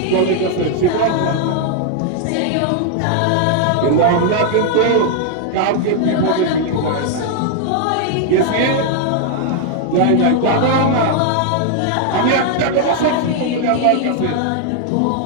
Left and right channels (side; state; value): both; different; correlation 0.00